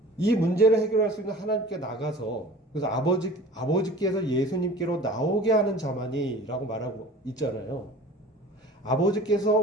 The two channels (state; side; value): normal; both; correlation 0.42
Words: 이 문제를 해결할 수 있는 하나님께 나가서, 그래서 아버지께서 예수님께로 나오게 하는 자만이 라고 말하고 있잖아요. 아버지께서